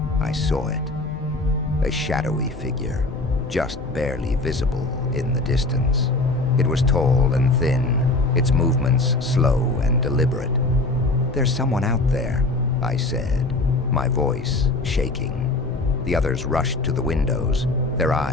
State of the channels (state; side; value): quieter; right; 3.0 dB